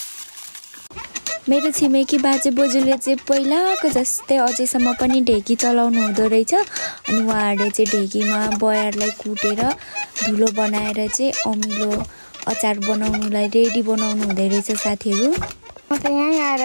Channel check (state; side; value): inverted; both; correlation -1.00